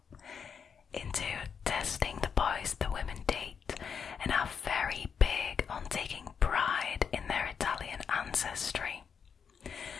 into testing the boys the women date, and are very big on taking pride in their Italian ancestry.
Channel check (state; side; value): quieter; right; 6.7 dB